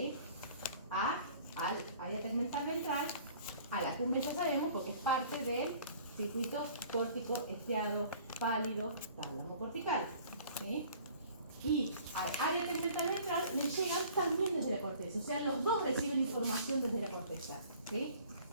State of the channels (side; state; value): both; inverted; correlation -0.51